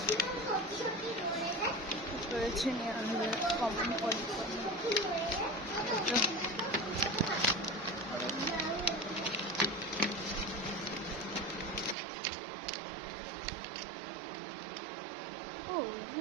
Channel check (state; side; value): drops out; left; at 12.0 s